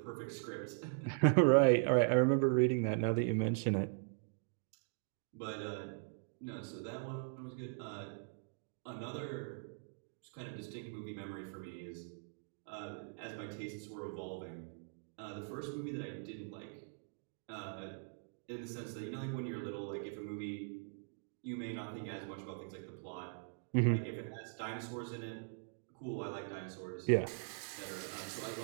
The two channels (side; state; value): left; silent; digital silence